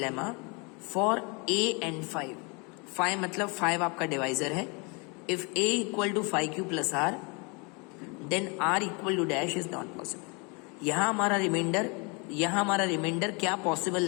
for a and 5 मतलब 5 आपका डिवाइजर है. If a equal to 5q plus r then r equal to dash is not possible. यहाँ हमारा reminder क्या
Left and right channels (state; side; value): quieter; right; 31.1 dB